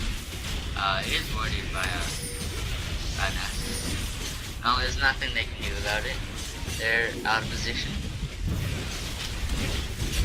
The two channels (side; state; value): both; identical; correlation 1.00